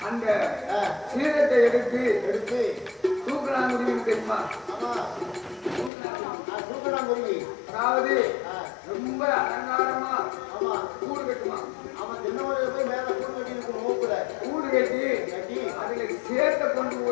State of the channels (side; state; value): right; drops out; at 5.9 s